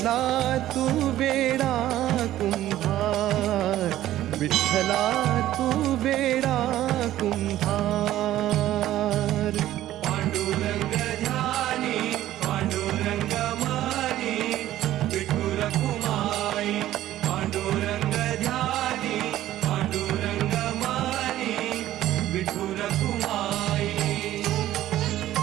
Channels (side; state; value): left; quieter; 13.8 dB